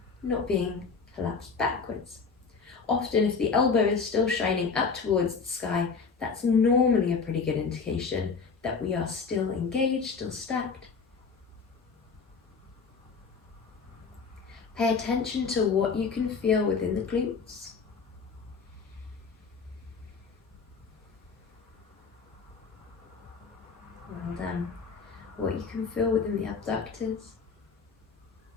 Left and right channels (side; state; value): right; quieter; 5.1 dB